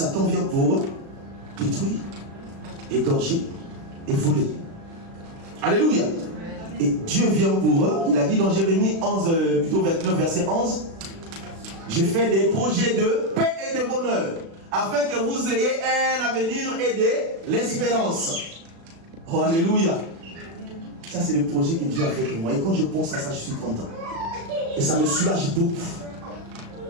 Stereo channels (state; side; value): late; left; 36 ms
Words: vient pour détruire, égorger et voler. Alléluia. Et Dieu vient pour eux. Il a dit dans Jérémie 11, plutôt 29, verset 11, je fais des projets de paix et de bonheur, afin que vous ayez un avenir et de l'espérance. Oh, alléluia. Ça, c'est le projet que Dieu a fait pour moi. Et quand je pense à ça, je suis content. Et ça me soulage beaucoup